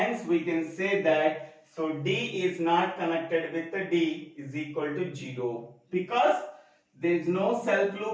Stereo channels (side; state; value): both; identical; correlation 1.00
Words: we can say that, so D is not connected with D is equal to 0, because there is no self